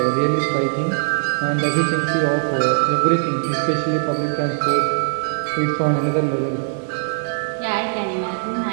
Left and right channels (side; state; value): left; silent; 64 dB below the other